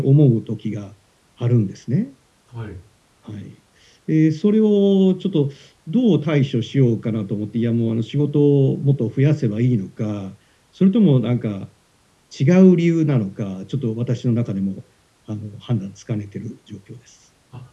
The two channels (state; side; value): identical; both; correlation 1.00